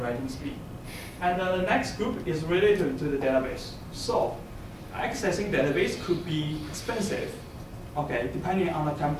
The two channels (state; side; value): identical; both; correlation 1.00